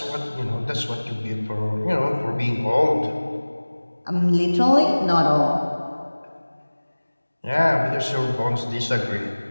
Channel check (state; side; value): inverted; both; correlation -1.00